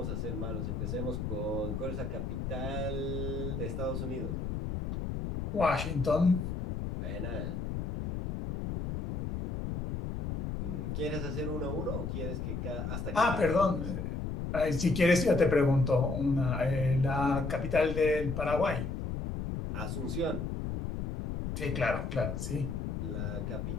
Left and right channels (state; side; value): noise; left; rumble, 4 dB below the sound